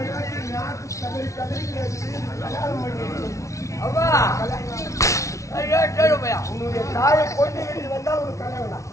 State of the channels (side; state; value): right; late; 0.15 ms